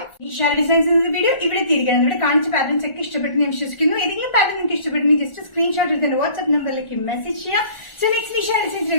ഈ ഷാര ഡിസൈൻസ് വീഡിയോ ഇവിടെ തിരികെ ഇവിടെ കാണിച്ച പാറ്റേൺസ് ഒക്കെ ഇഷ്ടപ്പെട്ടു ഞാൻ വിശ്വസിക്കുന്നു. ഏതെങ്കിലും പാറ്റേൺ നിങ്ങൾക്ക് ഇഷ്ടപ്പെട്ടെങ്കിൽ ജസ്റ്റ് സ്ക്രീൻഷോട്ട് എടുത്ത് വാട്സ്ആപ്പ് നമ്പറിലേക്ക് മെസ്സേജ് ചെയ്യാം. സോ നെക്സ്റ്റ് ഷാര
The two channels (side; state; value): right; late; 1.4 ms